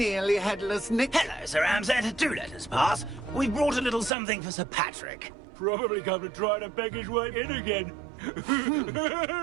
headless Nick? Hello, Sir Ramsett. Do let us pass. We brought a little something for Sir Patrick. Probably come to try to beg his way in again.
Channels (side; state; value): left; drops out; at 4.1 s